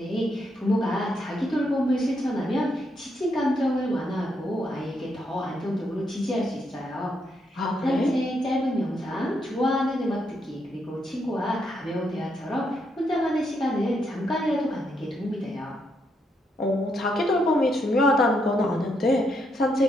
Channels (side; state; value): both; normal; correlation 0.78